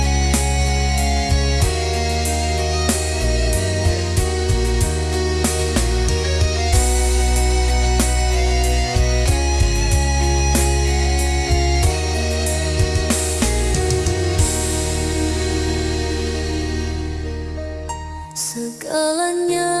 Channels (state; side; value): identical; both; correlation 1.00